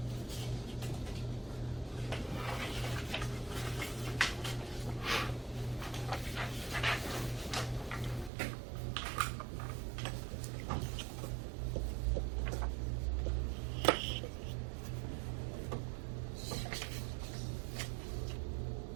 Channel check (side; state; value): left; drops out; at 8.3 s